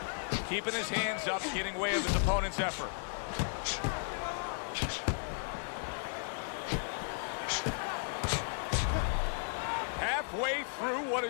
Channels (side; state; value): right; silent; 55 dB below the other